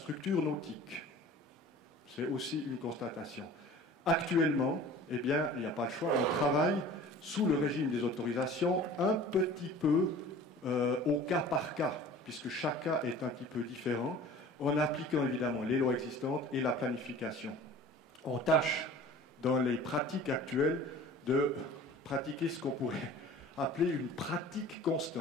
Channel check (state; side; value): normal; both; correlation 0.43